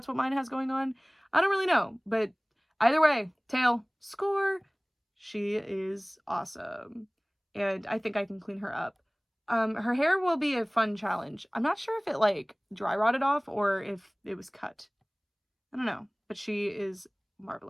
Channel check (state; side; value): identical; both; correlation 1.00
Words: what mine has going on. I don't really know, but either way, tail, score. She is awesome. And I think I can clean her up. Her hair will be a fun challenge. I'm not sure if it like dry rotted off or if it was cut. I don't know, but she is